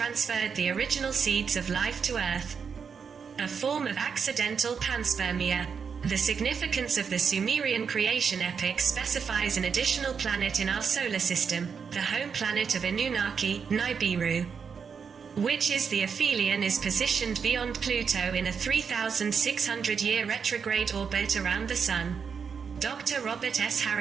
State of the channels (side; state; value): left; quieter; 6.3 dB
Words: the original seeds of life to Earth, a form of accidental panspermia. The significance of the Sumerian creation epic specifies an additional planet in our solar system, the home planet of Anunnaki, Nibiru, which is the aphelion, is positioned beyond Pluto in a 3,600-year retrograde orbit around the Sun. Dr. Robert S.